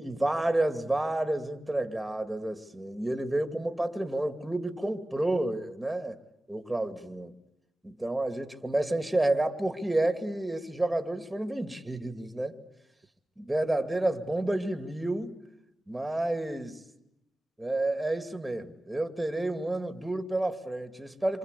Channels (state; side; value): normal; both; correlation 0.96